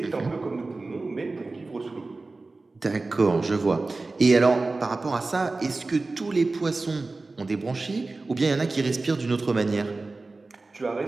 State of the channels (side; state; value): left; quieter; 3.5 dB